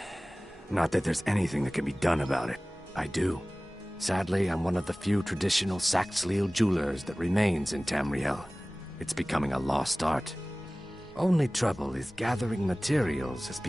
Not that there's anything that can be done about it. I do. Sadly, I'm one of the few traditional Saxhleel jewelers that remains in Tamriel. It's becoming a lost art. Only trouble is gathering materials has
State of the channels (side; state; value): both; normal; correlation 0.98